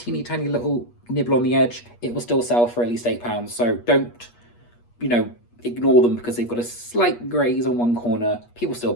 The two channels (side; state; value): right; late; 8.4 ms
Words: tiny little nibble on the edge. It will still sell for at least £8. So don't, ignore them because they've got a slight graze on one corner. People still